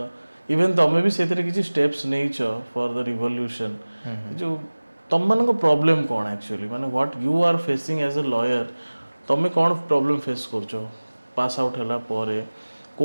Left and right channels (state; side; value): inverted; both; correlation -1.00